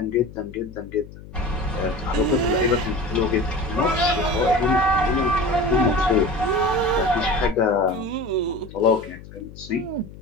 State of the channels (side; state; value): left; noise; hum, 17 dB below the sound